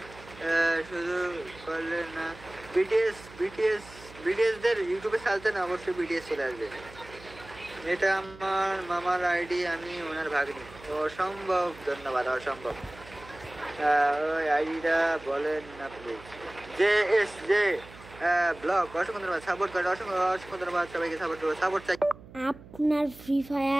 শুধু করলে না বিটিএস দের ইউটিউবে চালতে না অবশ্যই বিটিএস চলে আসবে এটা আমার মামার আইডি আমি ওনার ভাগ্নি অসম্ভব ধন্যবাদ অসম্ভব ওই আইডিটা বলেন না প্লিজ জে ব্লগ অসংখ্য ধন্যবাদ সাপোর্ট করে অসংখ্য ধন্যবাদ সবাইকে সাপোর্ট চাই আপনার ফ্রি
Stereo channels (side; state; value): right; noise; hum, 19 dB below the sound